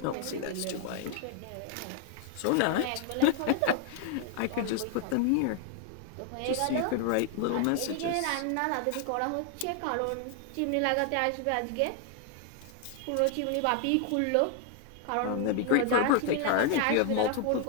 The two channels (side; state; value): both; different; correlation 0.00